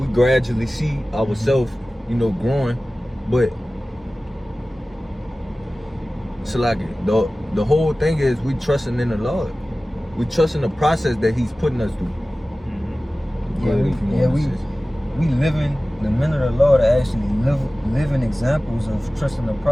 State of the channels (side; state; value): both; normal; correlation 0.97